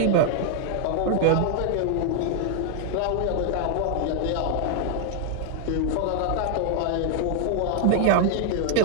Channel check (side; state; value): both; different; correlation 0.00